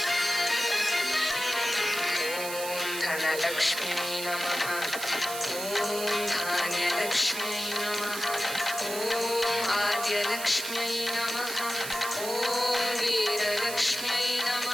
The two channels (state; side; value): noise; right; hiss, 7 dB below the sound